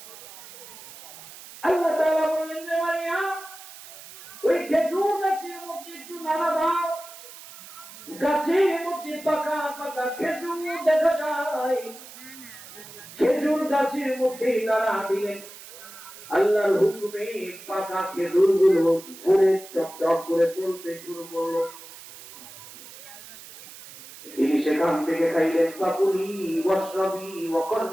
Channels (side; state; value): right; noise; hiss, 17 dB below the sound